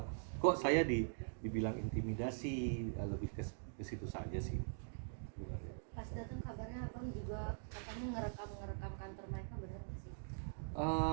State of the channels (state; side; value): silent; left; digital silence